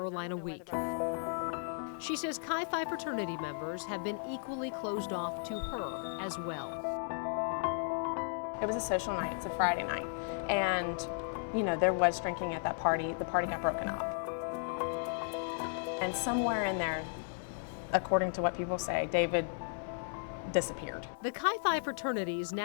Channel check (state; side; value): silent; right; digital silence